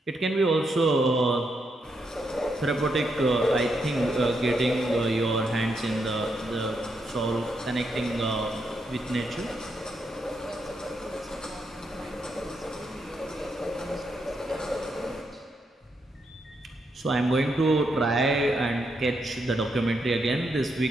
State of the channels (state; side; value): normal; both; correlation 0.80